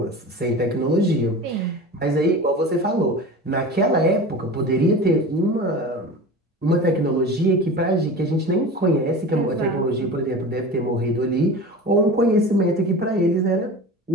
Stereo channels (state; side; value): normal; both; correlation 0.33